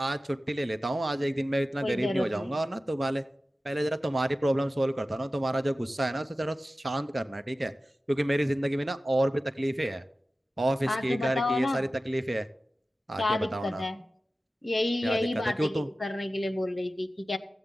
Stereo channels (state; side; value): normal; both; correlation 0.95